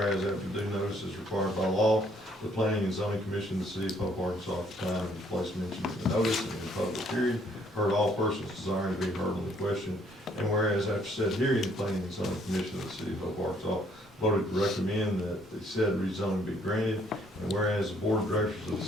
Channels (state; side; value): normal; both; correlation 0.65